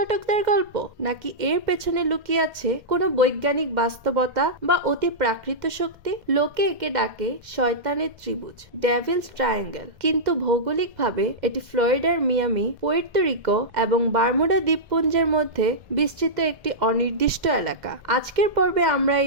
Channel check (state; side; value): late; left; 2.1 ms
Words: গল্প, নাকি এর পেছনে লুকিয়ে আছে কোনো বৈজ্ঞানিক বাস্তবতা বা অতি প্রাকৃত শক্তি? লোকে একে ডাকে শয়তানের ত্রিভুজ, ডেভিলস ট্রায়াঙ্গেল, কিন্তু ভৌগোলিকভাবে এটি ফ্লোরিডার মিয়ামি, পুয়ের্তো রিকো এবং বারমুডা দ্বীপপুঞ্জের মধ্যে বিস্তৃত একটি অনির্দিষ্ট এলাকা। আজকের পর্বে আমরা